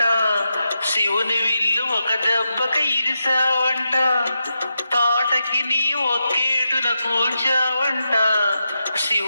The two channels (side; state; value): both; inverted; correlation -0.86